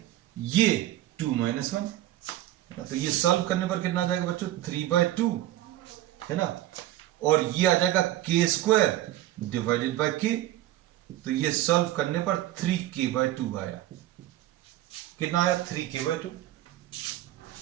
ये 2 - 1, तो ये सॉल्व करने पर कितना आ जाएगा बच्चों, 3/2, है ना, और ये आ जाएगा k² डिवाइडेड बाय k, तो ये सॉल्व करने पर 3k/2 आया, कितना आया, 3k/2।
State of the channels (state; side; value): quieter; left; 14.3 dB